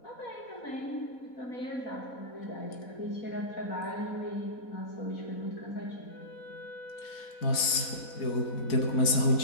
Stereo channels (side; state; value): right; late; 4.1 ms